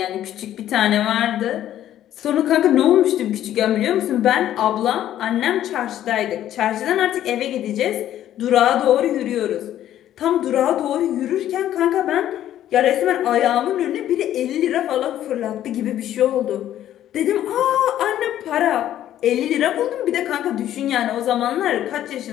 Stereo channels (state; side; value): quieter; right; 12.0 dB